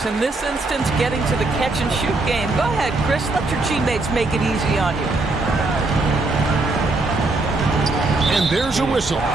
In this instance, getting to the catch-and-shoot game. Go ahead, Chris. Let your teammates make it easy on you. And there's a whistle.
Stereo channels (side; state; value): left; quieter; 3.2 dB